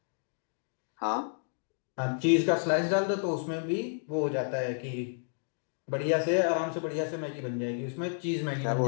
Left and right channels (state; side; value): silent; right; digital silence